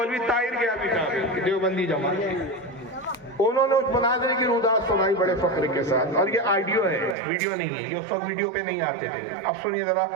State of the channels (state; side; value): drops out; left; at 7.2 s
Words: طاہر کے ابھی کہا دیوبندی جماعت، انہوں نے اس مناظرے کی رودات سنائی بڑے فخر کے ساتھ. اور یہ آڈیو ہے، ویڈیو نہیں ہے، یہ اس وقت ویڈیو پہ نہیں آتے تھے. اب سنیے ذرا.